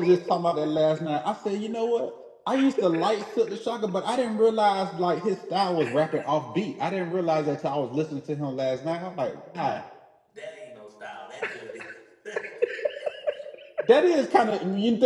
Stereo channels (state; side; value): identical; both; correlation 1.00